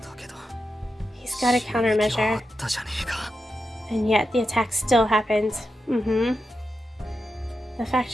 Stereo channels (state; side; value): normal; both; correlation 0.88